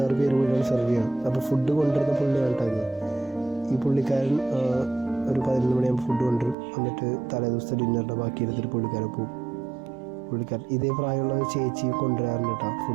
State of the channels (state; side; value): drops out; left; at 6.6 s